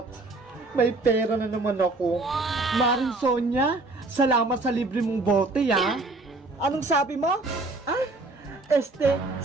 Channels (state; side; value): quieter; left; 3.2 dB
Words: May pera na naman ako. Maring Sonia, salamat sa libre mong bote, Anong sabi mo?